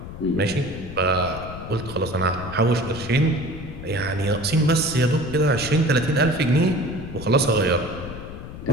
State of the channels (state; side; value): noise; left; rumble, 11 dB below the sound